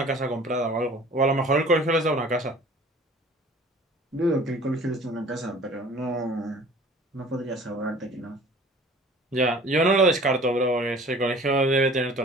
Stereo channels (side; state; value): both; normal; correlation 0.48